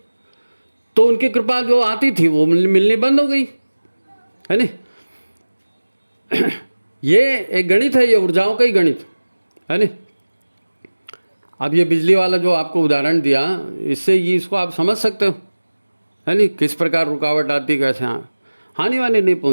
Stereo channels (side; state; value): both; inverted; correlation -1.00